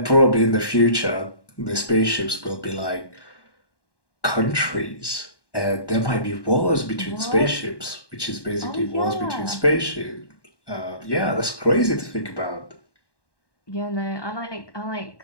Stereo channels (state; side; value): late; right; 1.1 ms